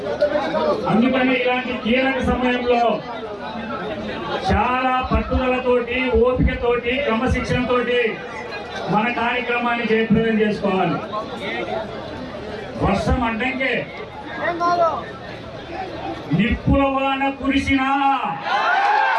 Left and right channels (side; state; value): both; identical; correlation 1.00